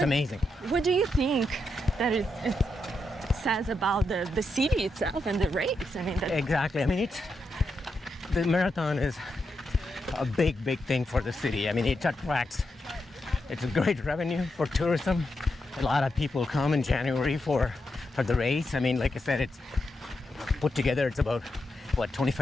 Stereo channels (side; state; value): both; normal; correlation 0.84